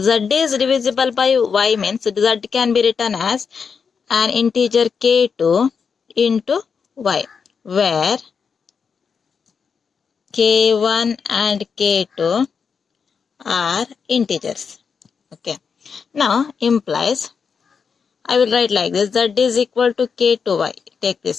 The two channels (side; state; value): right; quieter; 6.0 dB